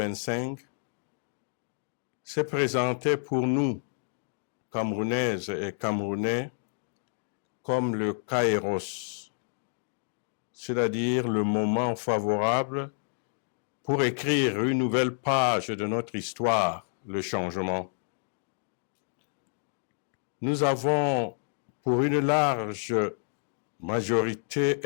s'est présentée pour nous, Camerounaises et Camerounais, comme le kairos, c'est-à-dire le moment favorable pour écrire une nouvelle page de notre histoire, le changement. Nous avons, pour une large majorité,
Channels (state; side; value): silent; right; digital silence